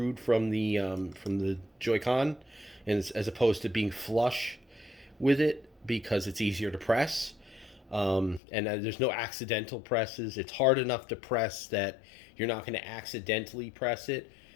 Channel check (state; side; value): drops out; right; at 8.4 s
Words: from the Joy-Con, and as opposed to being flush with it because it's easier to press. And there's no accidental presses. It's hard enough to press that you're not going to accidentally press it,